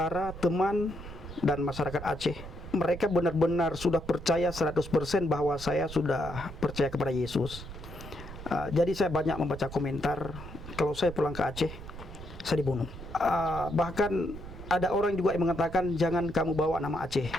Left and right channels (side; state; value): right; noise; rumble, 12 dB below the sound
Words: teman, dan masyarakat Aceh, mereka benar-benar sudah percaya 100% bahwa saya sudah percaya kepada Yesus. Jadi saya banyak membaca komentar, kalau saya pulang ke Aceh, saya dibunuh. Bahkan ada orang juga yang mengatakan, jangan kamu bawa nama Aceh.